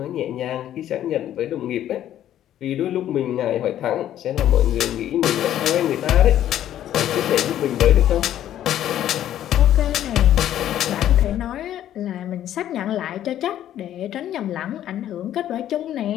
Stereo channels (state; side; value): quieter; right; 11.7 dB